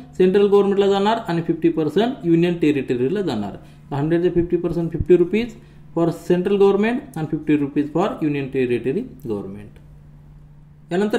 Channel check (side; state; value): both; identical; correlation 1.00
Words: सेंट्रल गव्हर्नमेंटला जाणार आणि 50% युनियन टेरिटरीला जाणार. 100चे 50% 50 रुपीज फॉर सेंट्रल गव्हर्नमेंट आणि 50 rupees for union territory government.